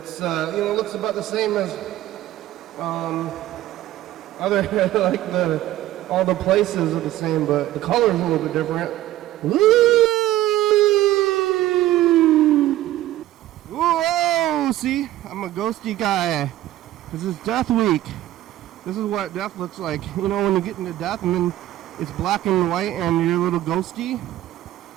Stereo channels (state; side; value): quieter; left; 14.5 dB